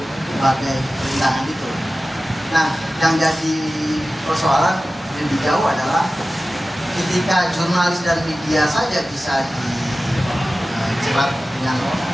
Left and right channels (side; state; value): both; normal; correlation 0.95